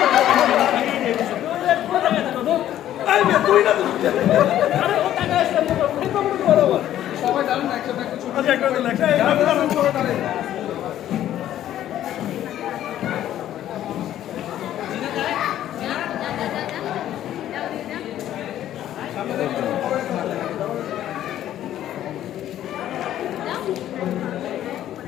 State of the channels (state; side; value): quieter; right; 12.1 dB